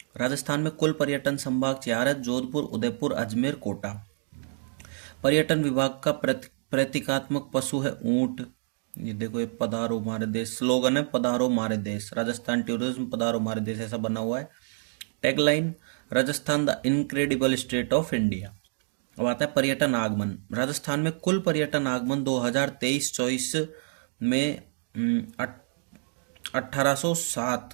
राजस्थान में कुल पर्यटन संभाग 4 है: जोधपुर, उदयपुर, अजमेर, कोटा। पर्यटन विभाग का प्रतीकात्मक पशु है ऊंट। ये देखो, ये पधारो मारे देश स्लोगन है, पधारो मारे देश। राजस्थान टूरिज्म पधारो मारे देश ऐसा बना हुआ है। Tagline, Rajasthan the incredible state of India. अब आता है पर्यटन आगमन। राजस्थान में कुल पर्यटन आगमन 2023-24 में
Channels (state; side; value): silent; left; digital silence